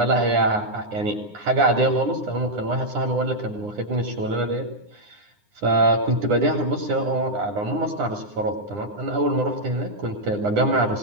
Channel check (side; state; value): left; late; 9.8 ms